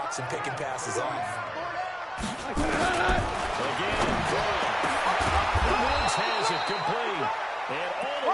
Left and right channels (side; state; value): both; identical; correlation 1.00